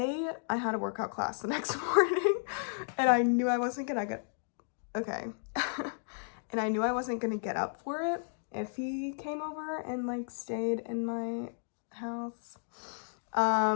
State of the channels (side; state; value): right; silent; digital silence